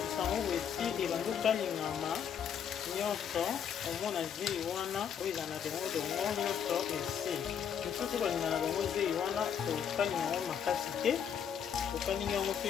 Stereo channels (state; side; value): quieter; right; 8.1 dB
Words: yango boye esi ebanda okalingama nyonso omona zei wana oyo eza na dongo nyonso esi mosusu balinga na bango zei wana okalinga yango makasi te okalingi yango mpe